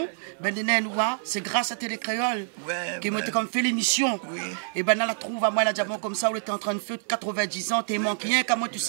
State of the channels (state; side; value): silent; left; 60 dB below the other